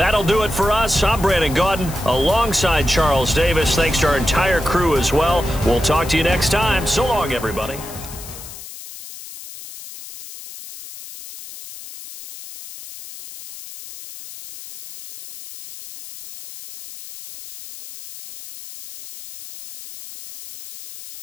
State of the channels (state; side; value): noise; left; hiss, 14 dB below the sound